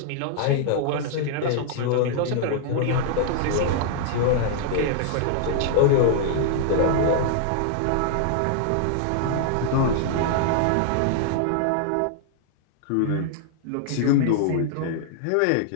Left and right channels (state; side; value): different; both; correlation -0.01